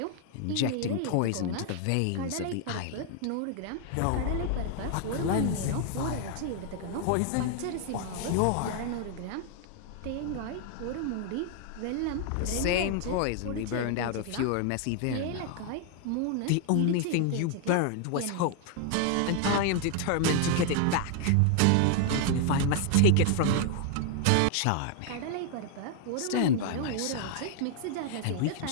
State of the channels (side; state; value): both; different; correlation 0.00